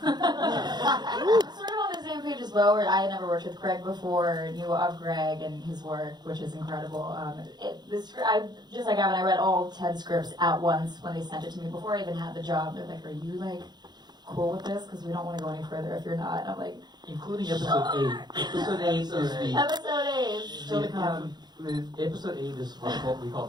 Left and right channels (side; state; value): left; late; 0.20 ms